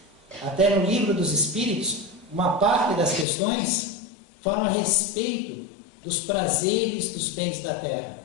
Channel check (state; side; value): drops out; right; at 3.2 s